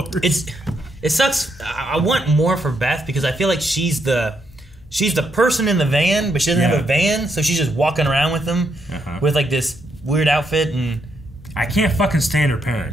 It sucks. I want more for Beth, because I feel like she's the person in the van, but she doesn't have a van, so she's just walking around with them with, like, this weird outfit, and... I can't fucking stand her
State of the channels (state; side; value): normal; both; correlation 0.78